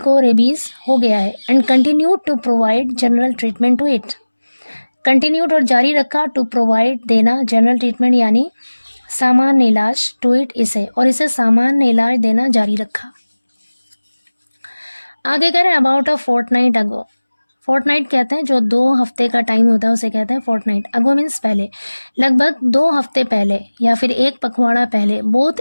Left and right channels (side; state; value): both; inverted; correlation -1.00